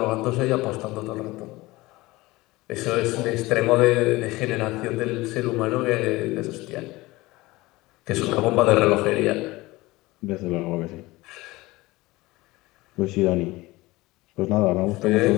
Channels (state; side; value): quieter; right; 20.3 dB